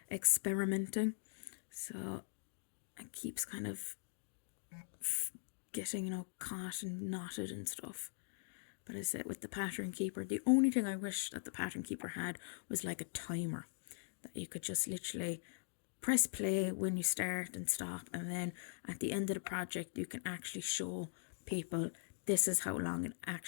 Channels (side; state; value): right; silent; digital silence